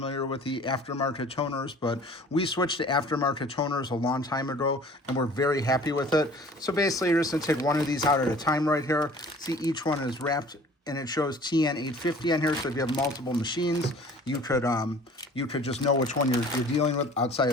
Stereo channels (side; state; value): both; normal; correlation 0.48